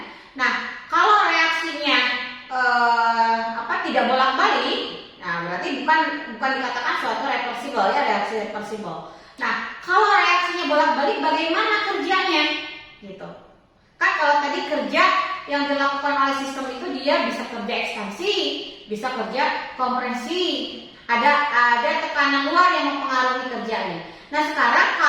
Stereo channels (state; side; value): identical; both; correlation 1.00